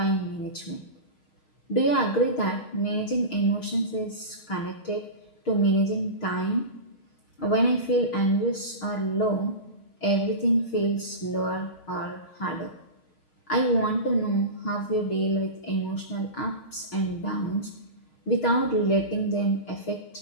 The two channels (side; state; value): right; late; 6.4 ms